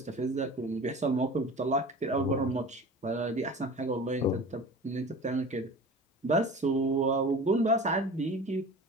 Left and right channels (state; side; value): normal; both; correlation 0.38